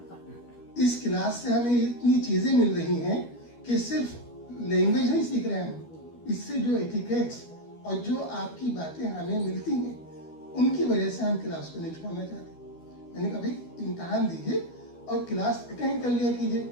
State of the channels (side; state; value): right; late; 12 ms